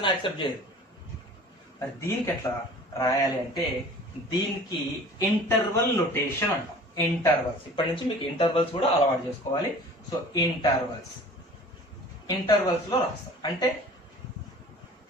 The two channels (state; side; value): normal; both; correlation 0.44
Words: యాక్సెప్ట్ చేయదు. మరి దీనికి ఎట్లా రాయాలి అంటే దీనికి ఇంటర్వల్ నోటేషన్ అంటాం. ఇంటర్వల్స్, ఇప్పటి నుంచి మీకు ఇంటర్వల్స్ కూడా అలవాటు చేసుకోవాలి. సో ఇంటర్వల్స్ లో రాస్తాం. అంటే